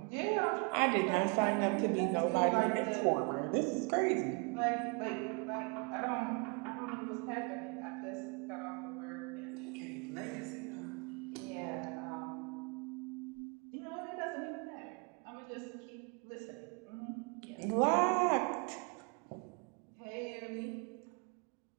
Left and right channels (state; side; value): quieter; left; 32.8 dB